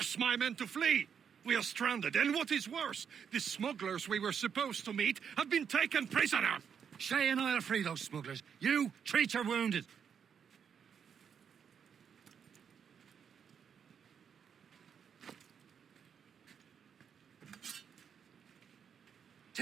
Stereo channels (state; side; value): quieter; left; 7.4 dB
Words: my men to flee. We are stranded, and what is worse, the smugglers we were supposed to meet have been taken prisoner. Shay and I'll free those smugglers. You, treat your wounded.